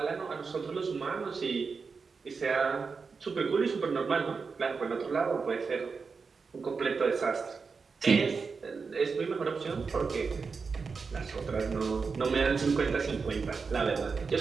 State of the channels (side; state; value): left; quieter; 5.0 dB